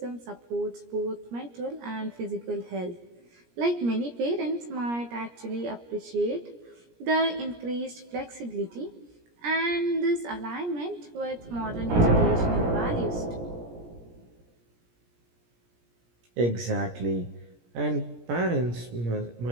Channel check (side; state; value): left; late; 17 ms